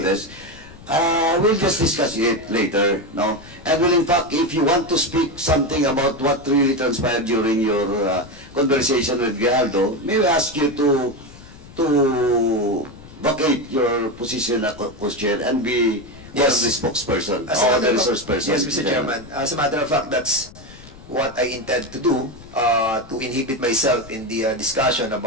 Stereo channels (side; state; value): left; noise; rumble, 19 dB below the sound